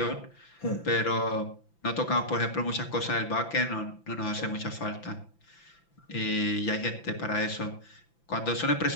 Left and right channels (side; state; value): right; late; 5.9 ms